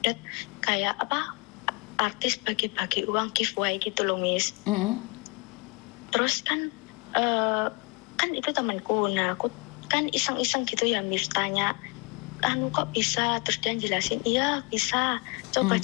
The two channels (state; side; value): quieter; right; 30.0 dB